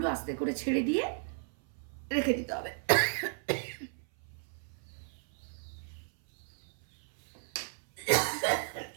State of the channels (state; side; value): silent; left; 55 dB below the other